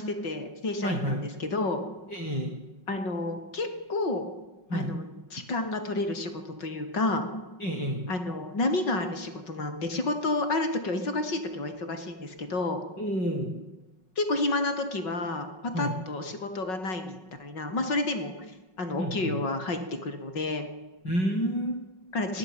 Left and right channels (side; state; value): right; late; 5.4 ms